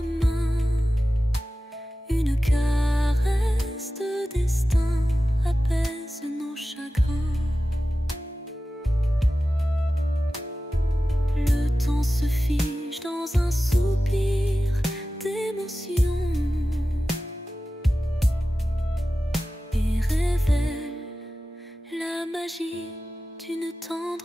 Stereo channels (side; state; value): both; normal; correlation 0.95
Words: une caresse de destin apaise nos chagrins. Le temps se fige dans un soupir d'émotion et révèle la magie d'une